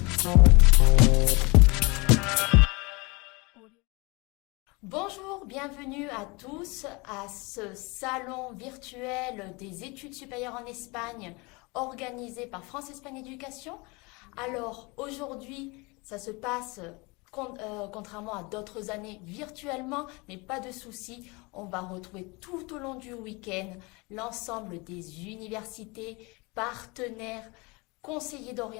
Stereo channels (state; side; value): quieter; right; 26.8 dB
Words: Bonjour, bienvenue à tous à ce salon virtuel des études supérieures en Espagne organisé par France-Espagne Éducation. Alors aujourd'hui, ça se passe contrairement à d'autres années virtuellement, mais pas de souci, on va retrouver tout au long du week-end l'ensemble des universités, partenaires, conseillers